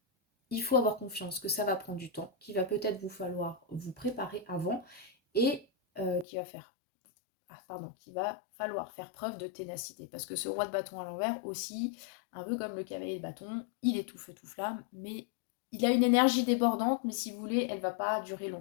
il faut avoir confiance que ça va prendre du temps, qu'il va peut-être vous falloir vous préparer avant et qu'il va falloir faire preuve de ténacité. Parce que ce roi de bâton à l'envers aussi, un peu comme le cavalier de bâton, il est tout feu tout flamme, mais il a une énergie débordante, mais si vous voulez, elle ne va pas durer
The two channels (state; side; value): drops out; right; at 6.2 s